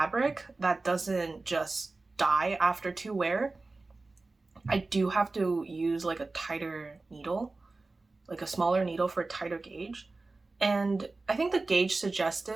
that doesn't just die after 2 wear, I do have to use like a tighter needle, like a smaller needle for a tighter gauge. And I think the gauge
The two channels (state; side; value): quieter; left; 3.4 dB